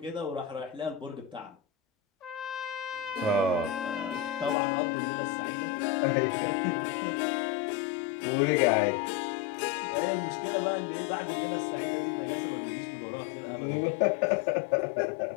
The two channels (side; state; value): right; drops out; at 4.5 s